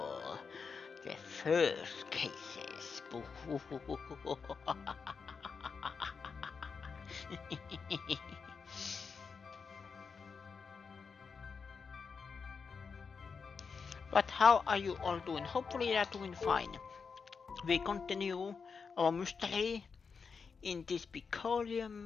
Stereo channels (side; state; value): right; quieter; 5.4 dB